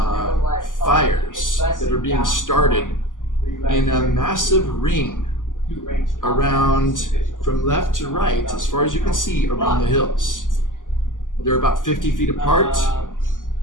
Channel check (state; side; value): late; right; 0.88 ms